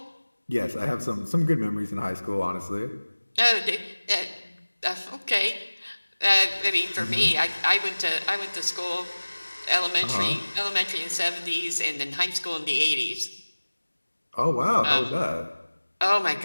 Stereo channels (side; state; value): both; inverted; correlation -1.00